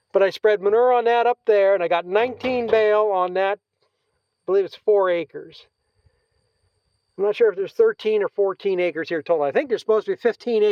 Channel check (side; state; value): both; identical; correlation 1.00